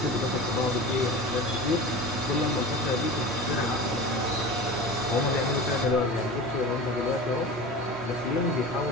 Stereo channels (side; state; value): both; normal; correlation 0.33